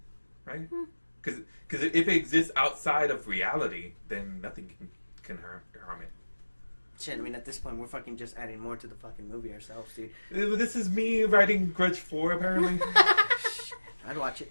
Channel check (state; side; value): inverted; both; correlation -1.00